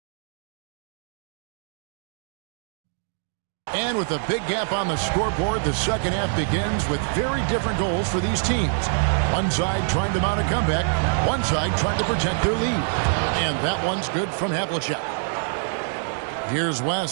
And with a big gap on the scoreboard, the second half begins with very different goals for these teams. One side trying to mount a comeback, one side trying to protect their lead. And that one's good from Havlicek. Here's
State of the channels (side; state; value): left; silent; digital silence